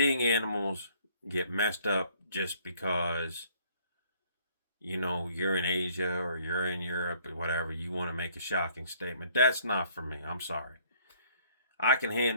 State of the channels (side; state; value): both; inverted; correlation -0.60